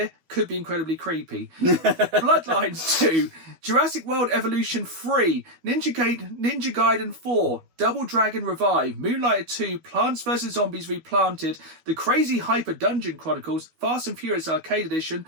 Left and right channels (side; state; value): left; late; 12 ms